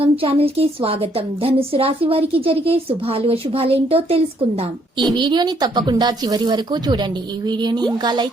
ఛానల్ కి స్వాగతం. ధనుసు రాశి వారికి జరిగే శుభాలు అశుభాలేంటో తెలుసుకుందాం. ఈ వీడియోని తప్పకుండా చివరి వరకు చూడండి. ఈ వీడియోని ఇంకా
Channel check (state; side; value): normal; both; correlation 0.69